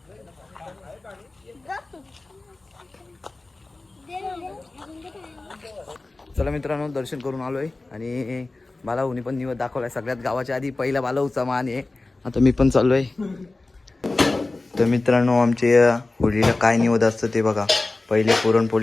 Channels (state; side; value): quieter; right; 3.2 dB